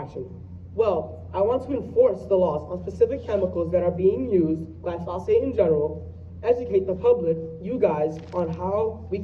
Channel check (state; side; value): identical; both; correlation 1.00